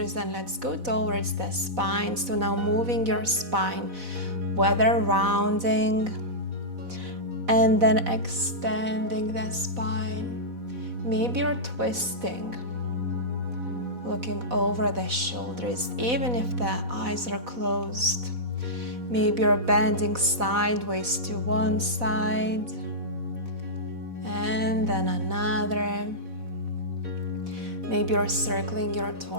and let's go towards the spine. So now moving your spine, whether rounding and then extending the spine. Maybe you're twisting, looking over the shoulders, even if the eyes are closed. Maybe you're bending sideways to one side and then another. Maybe you're circling your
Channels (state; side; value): late; left; 4.1 ms